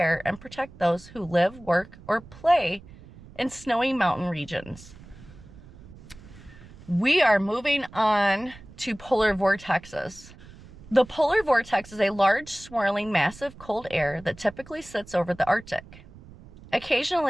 and protect those who live, work, or play in snowy mountain regions. We are moving on to polar vortexes. The polar vortex is a large, swirling, massive cold air that typically sits over the Arctic.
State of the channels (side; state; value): right; noise; rumble, 20 dB below the sound